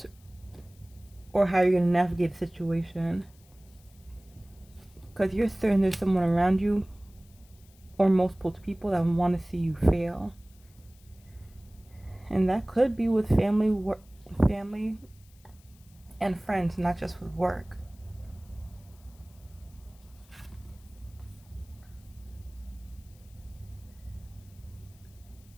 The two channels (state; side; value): noise; left; hiss, 28 dB below the sound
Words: or how you're going to navigate the situation. Because you're certain there's someone around you or multiple people that want to see you fail. And that could be with family and friends, not just with work.